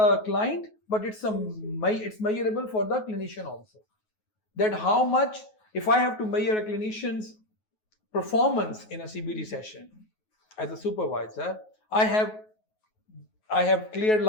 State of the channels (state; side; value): late; right; 9.3 ms